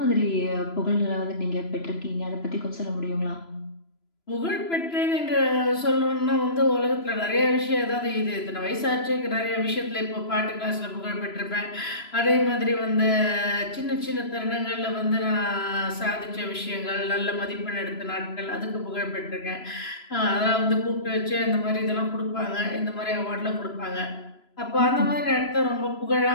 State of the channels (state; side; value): late; right; 3.0 ms